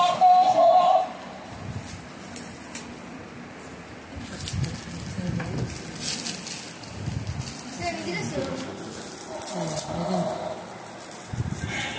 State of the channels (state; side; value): identical; both; correlation 1.00